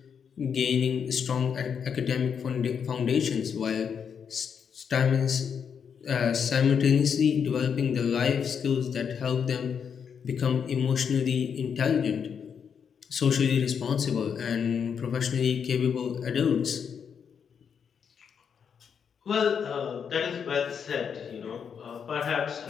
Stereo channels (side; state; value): right; quieter; 7.1 dB